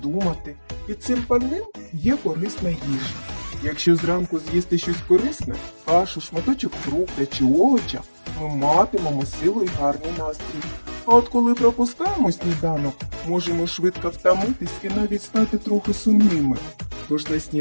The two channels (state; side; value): inverted; both; correlation -1.00